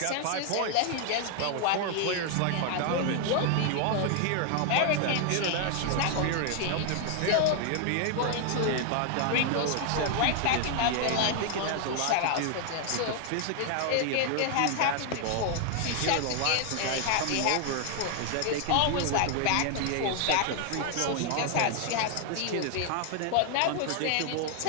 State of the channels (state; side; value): different; both; correlation 0.00